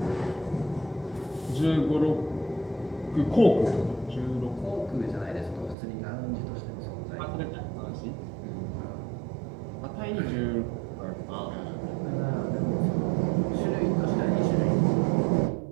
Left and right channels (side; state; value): left; drops out; at 5.8 s